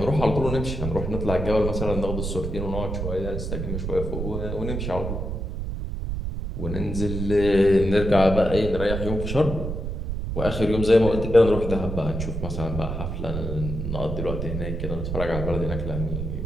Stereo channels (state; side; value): noise; right; rumble, 4 dB below the sound